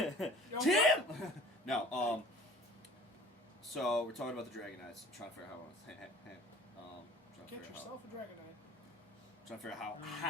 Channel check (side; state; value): both; normal; correlation 0.47